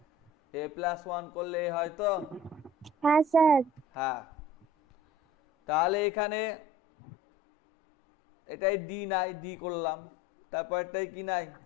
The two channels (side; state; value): right; drops out; at 6.1 s